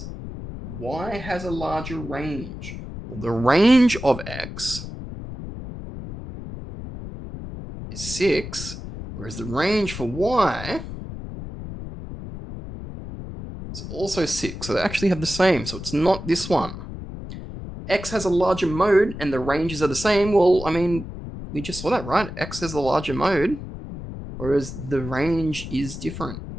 Y has a larger range. Well, the range of X is 6, whereas the range for Y is It's also 6, so they actually have the same, so it's not this one. X has a larger mode and the ranges are the same. Well, I mean, we just saw that, right? X has the larger mode, whereas the range is different.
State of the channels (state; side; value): noise; left; rumble, 10 dB below the sound